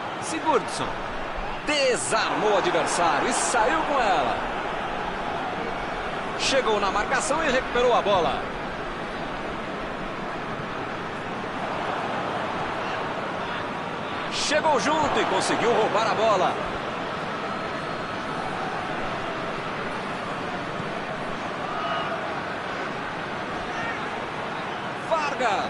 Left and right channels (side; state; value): both; identical; correlation 1.00